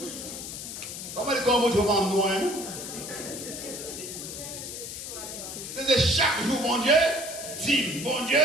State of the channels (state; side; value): noise; left; hiss, 8 dB below the sound